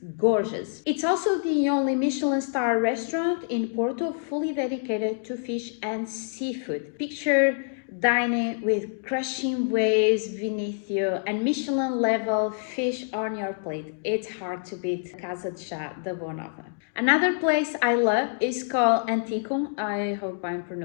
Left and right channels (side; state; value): right; silent; digital silence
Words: gorgeous. It's also the only Michelin star restaurant in Porto fully dedicated to fish and seafood. Picture dining with crushing waves beneath you and Michelin level fish on your plate. It's hard to beat Casa de Chá da Boa Nova. Another place I love is called Anticum. I hope I'm